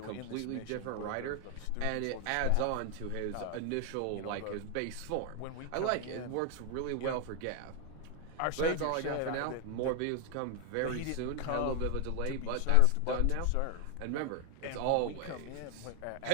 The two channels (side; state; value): both; different; correlation 0.00